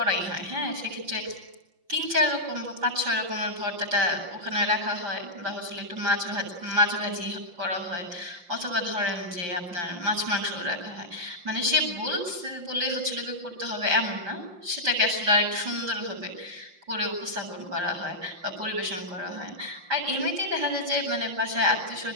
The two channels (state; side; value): late; left; 5.7 ms